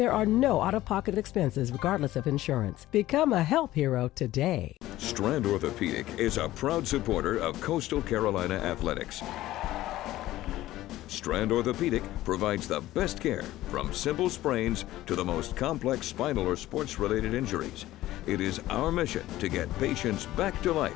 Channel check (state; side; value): quieter; right; 15.5 dB